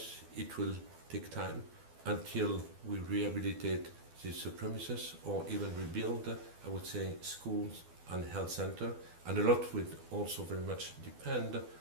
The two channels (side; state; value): left; late; 12 ms